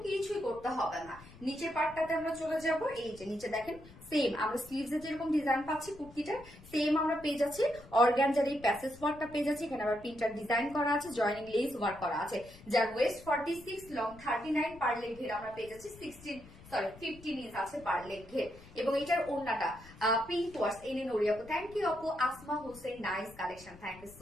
কিছুই করতে হবে না। নিচের পার্টটাতে আমরা চলে যাব, এই যে নিচে দেখেন সেম আমরা স্লিভস এ যেরকম ডিজাইন পাচ্ছি কুর্তিটা, সেম আমরা পেয়ে যাচ্ছি অর্গানজার এই প্যাসেজ ওয়ার্কটা পেয়ে যাচ্ছি। এখানে আবার প্রিন্টার ডিজাইন করা আছে, জয়েনিং লেস ওয়ার্ক করা আছে, যার ওয়েস্ট 46, লং 39, পার লেগ ঘের আমরা পেয়ে যাচ্ছি 15 ইঞ্চ আছে পার লেগ ঘের। এবং এটার ওড়নাটা পিঙ্ক ওয়ার্স, এনে নড়ি আপু, থ্যাংক ইউ আপু। Asma Hossain nice collection, thank you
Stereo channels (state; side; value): noise; left; rumble, 20 dB below the sound